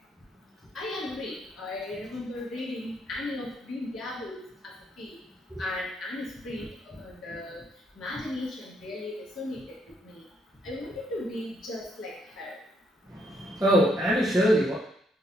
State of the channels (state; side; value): normal; both; correlation 0.73